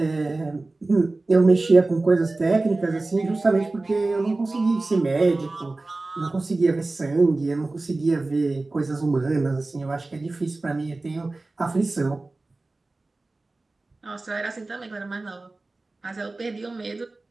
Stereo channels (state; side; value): quieter; left; 3.2 dB